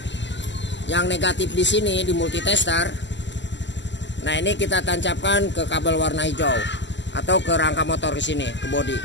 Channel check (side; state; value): right; late; 0.53 ms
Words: yang negatif di sini di multitester. Nah ini kita tancapkan ke kabel warna hijau atau ke rangka motor di sini, ke bodi.